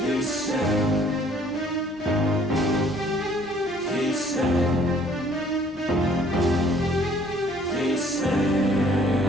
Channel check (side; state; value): both; normal; correlation 0.59